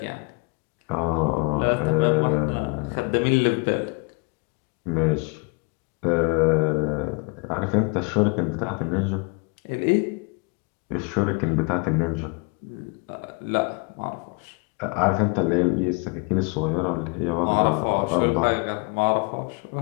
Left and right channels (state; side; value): quieter; right; 32.3 dB